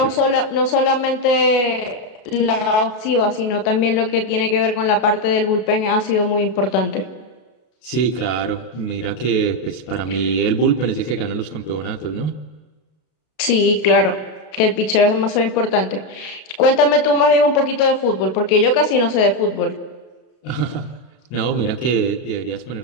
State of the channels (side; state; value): right; late; 32 ms